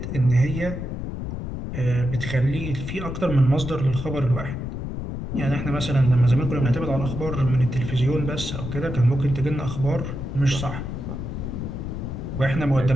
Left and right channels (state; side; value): noise; left; rumble, 6 dB below the sound